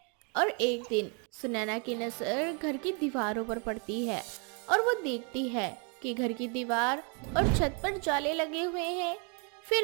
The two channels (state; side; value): quieter; left; 35.6 dB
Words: और एक दिन सुनैना की नजर घर की दीवारों पर पड़ती है और वो देखती है कि घर की दीवार और छत पर जाले लगे हुए हैं।